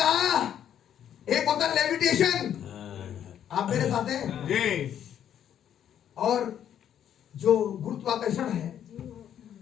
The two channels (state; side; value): quieter; right; 9.8 dB